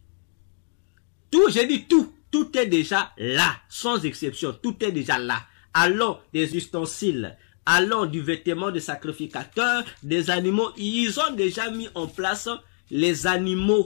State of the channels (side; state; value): right; silent; digital silence